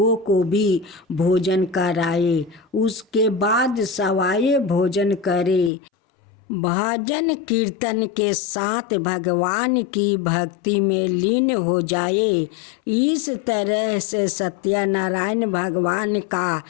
को भी भोजन कराए। उसके बाद सवाए भोजन करे। भजन कीर्तन के साथ भगवान की भक्ति में लीन हो जाए। इस तरह से सत्यनारायण भगवान का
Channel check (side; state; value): right; drops out; at 5.7 s